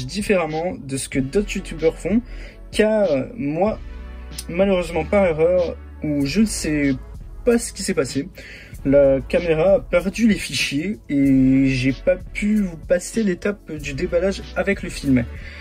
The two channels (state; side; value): identical; both; correlation 1.00